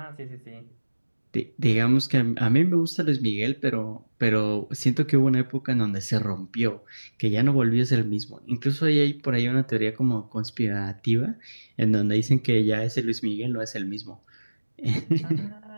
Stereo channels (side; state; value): both; inverted; correlation -1.00